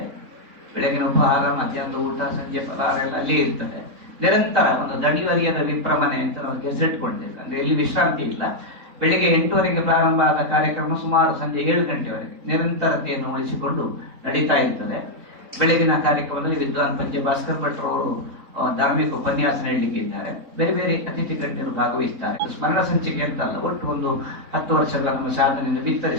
ಬೆಳಗಿನ ಉಪಹಾರ, ಮಧ್ಯಾಹ್ನದ ಊಟ, ಸಂಜೆ ಫಲಾಹಾರ ಎಲ್ಲ ಅಲ್ಲೇ ಇರ್ತದೆ. ನಿರಂತರ ಒಂದು ದಣಿವರಿಯದ ವಿಪ್ರಮನೆ ಅಂತ ನಾವು ಗೆಜೆಟ್ ಕೊಡ್ತೇವೆ. ಅಂದ್ರೆ ಎಲ್ಲಿ ವಿಶ್ರಾಂತಿ ಇಲ್ಲ. ಬೆಳಿಗ್ಗೆ 8:00 ಪ್ರಾರಂಭ ಆದ ಕಾರ್ಯಕ್ರಮ ಸುಮಾರು ಸಂಜೆ 7 ಗಂಟೆವರೆಗೆ ನಿರಂತರತೆಯನ್ನು ಉಳಿಸಿಕೊಂಡು ನಡೀತಾ ಇರ್ತದೆ. ಬೆಳಗಿನ ಕಾರ್ಯಕ್ರಮದಲ್ಲಿ ವಿದ್ವಾನ್ ಪಂಚೆ ಭಾಸ್ಕರ್ ಭಟ್ರವರು ಧಾರ್ಮಿಕ ಉಪನ್ಯಾಸ ನೀಡಲಿಕ್ಕೆ ಇದ್ದಾರೆ. ಬೇರೆ ಬೇರೆ ಅತಿಥಿ ಗಣ್ಯರು ಭಾಗವಹಿಸ್ತಾರೆ. ಸ್ಮರಣ ಸಂಚಿಕೆ ಅಂತಲ್ಲ, ಒಟ್ಟು ಒಂದು 10 ವರ್ಷಗಳ ನಮ್ಮ ಸಾಧನೆಯನ್ನು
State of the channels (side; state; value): left; late; 4.0 ms